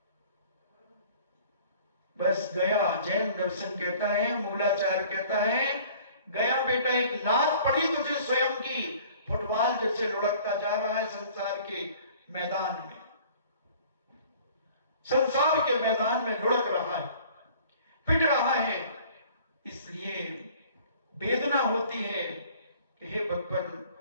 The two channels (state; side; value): inverted; both; correlation -0.51